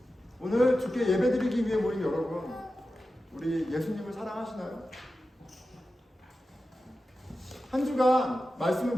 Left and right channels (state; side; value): normal; both; correlation 0.93